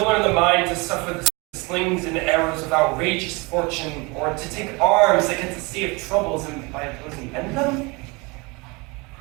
in the mind to suffer the slings and arrows of outrageous fortune, or to take arms against a sea of troubles and by opposing end them?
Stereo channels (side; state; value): left; quieter; 27.1 dB